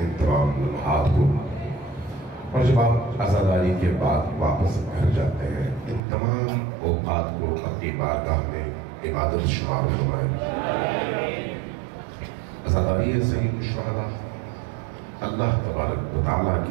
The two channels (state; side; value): drops out; left; at 6.0 s